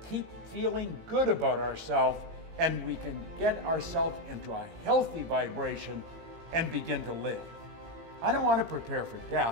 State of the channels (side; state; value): left; late; 18 ms